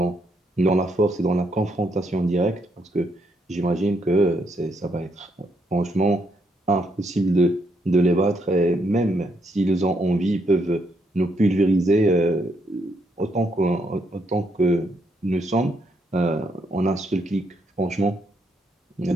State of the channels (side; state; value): both; normal; correlation 0.76